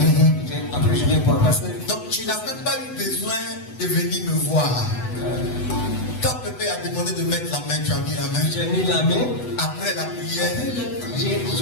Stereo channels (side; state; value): right; late; 8.0 ms